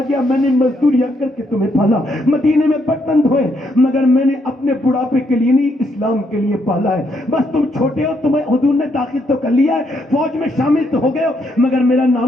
گیا، میں نے مزدوریاں کر کے تمہیں پالا، مدینے میں برتن دھوئے، مگر میں نے اپنے بڑھاپے کے لیے نہیں، اسلام کے لیے پالا ہے۔ بس تم چھوٹے ہو، تمہیں حضور نے داخل تو کر لیا ہے، فوج میں شامل تو ہو گئے ہو، مگر میرا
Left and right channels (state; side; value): normal; both; correlation 0.75